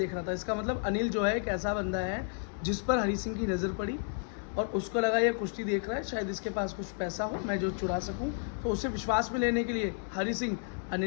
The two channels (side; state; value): right; silent; 56 dB below the other